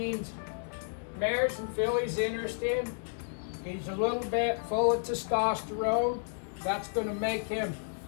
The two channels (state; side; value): silent; right; digital silence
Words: mares and fillies interested. He's a little bit full of testosterone. That's going to make him